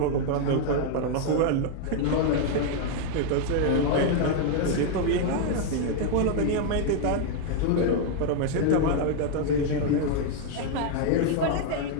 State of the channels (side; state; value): both; different; correlation 0.00